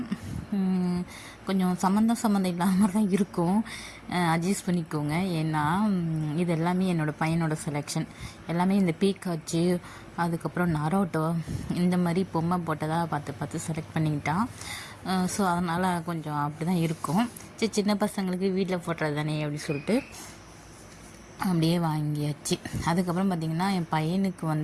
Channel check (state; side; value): identical; both; correlation 1.00